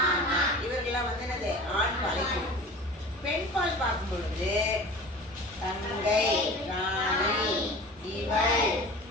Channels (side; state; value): both; normal; correlation 0.39